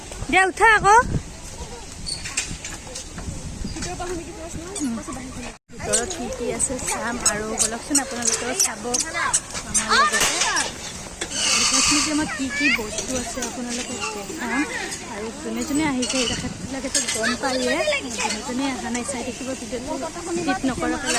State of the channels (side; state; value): both; identical; correlation 1.00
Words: দিয়া, উঠা আকৌ। ভিতৰত কি আছে চাম আৰু বলকচোন আপোনালোকেও চাব আমাৰ লগতে। সায়েন্স মিউজিয়ামত কি বস্তু আছে আপোনালোকক দেখাম। আৰু যোনে যোনে আহিছে তেখেতবিলাকেতো গম পায়ে, যোনে যোনে অহা নাই চাই থাকিব ভিডিঅ'টো স্কিপ নকৰাকৈ